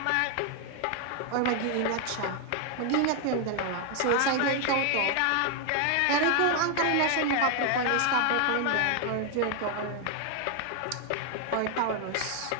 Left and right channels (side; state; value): both; different; correlation 0.00